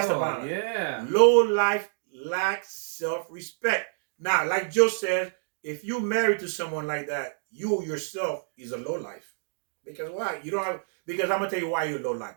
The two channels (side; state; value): left; silent; digital silence